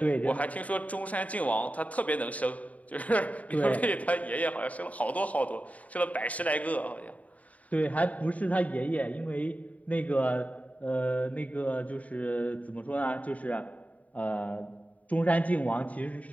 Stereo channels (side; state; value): right; late; 0.070 ms